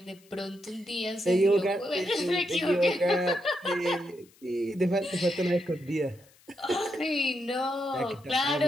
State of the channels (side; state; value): left; noise; hiss, 29 dB below the sound